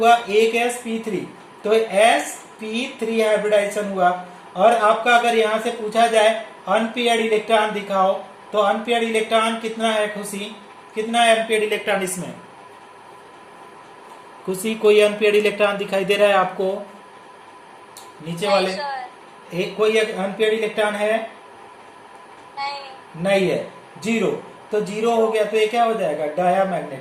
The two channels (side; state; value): both; identical; correlation 1.00